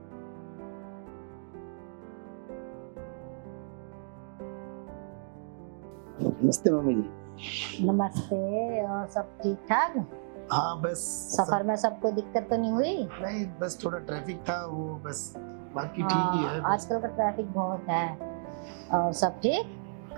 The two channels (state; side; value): silent; left; digital silence